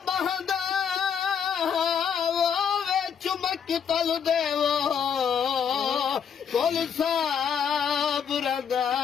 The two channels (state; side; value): quieter; right; 7.4 dB